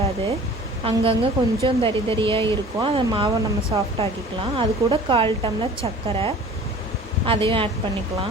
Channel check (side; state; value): both; normal; correlation 0.45